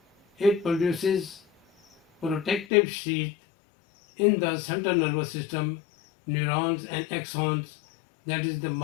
It produces protective sheath in the central nervous system, neurons and axons, that is the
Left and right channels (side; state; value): right; drops out; at 2.7 s